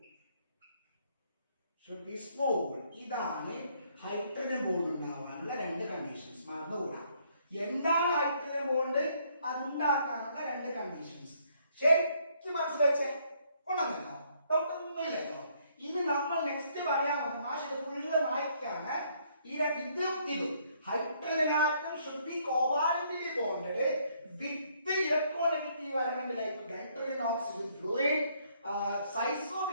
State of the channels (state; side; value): inverted; both; correlation -0.68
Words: ഇതാണ് ഹൈഡ്രജൻ ബോണ്ട് ഉണ്ടാവാനുള്ള രണ്ട് കണ്ടീഷൻസ്. മറന്നുകൂടാ, എന്താണ് ഹൈഡ്രജൻ ബോണ്ട് അതുണ്ടാക്കാനുള്ള രണ്ട് കണ്ടീഷൻസ് ശരിക്കും മനസ്സിലാച്ചേ കൊണ്ടുവന്നോ? ഡോക്ടറൊന്നുമില്ലല്ലോ. ഇനി നമ്മൾ നെക്സ്റ്റ് പറയാൻ മാഷ് ഫുള്ള് വായിക്കാണ്. ഇതും hydrogen atom should be covalently bonded with the electronegative element like nitrogen oxygen fluoride. Size of